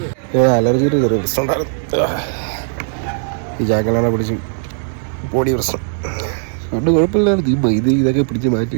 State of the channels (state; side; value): silent; left; digital silence